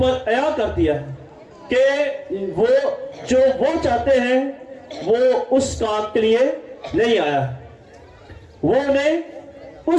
अया कर दिया है कि वो जो वो चाहते हैं वो उस काम के लिए नहीं आया है। वो उन्हें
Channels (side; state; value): both; identical; correlation 1.00